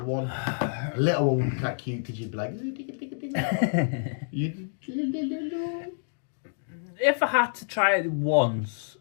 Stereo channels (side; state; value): right; silent; digital silence